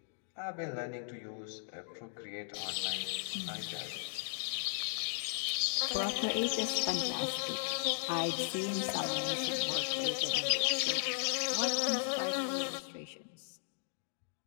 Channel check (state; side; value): silent; right; digital silence